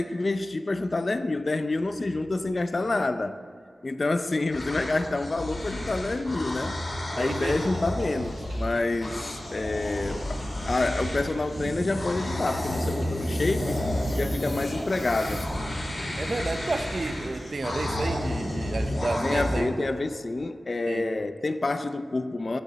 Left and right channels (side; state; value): both; normal; correlation 0.96